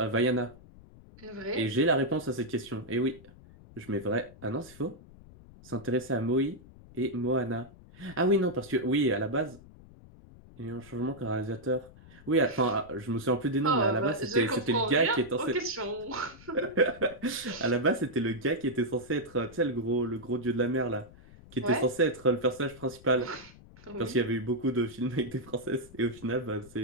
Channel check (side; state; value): left; noise; rumble, 21 dB below the sound